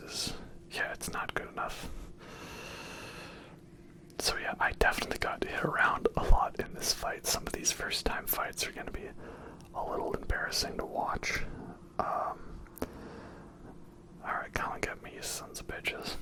yeah, it's not good enough. So yeah, I definitely got hit around a lot in this fight. Some of these first time fights are going to be a little embarrassing to watch. Alright, come and get me, you sons of bitches.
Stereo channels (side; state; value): both; identical; correlation 1.00